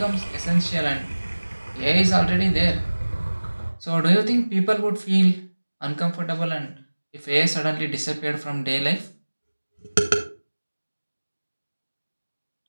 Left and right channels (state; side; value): inverted; both; correlation -1.00